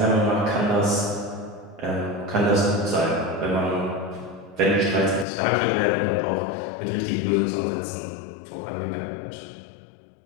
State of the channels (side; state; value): right; drops out; at 5.2 s